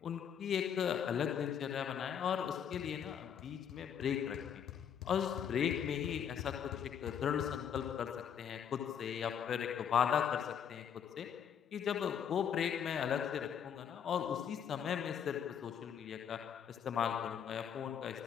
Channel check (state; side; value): quieter; right; 8.2 dB